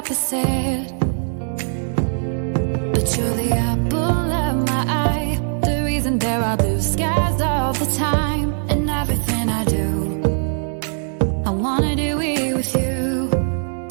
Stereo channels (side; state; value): left; silent; 65 dB below the other